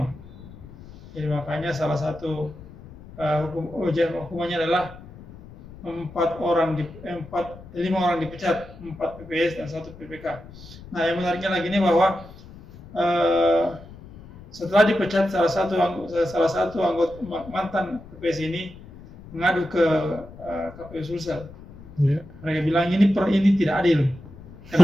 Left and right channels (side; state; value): left; noise; rumble, 17 dB below the sound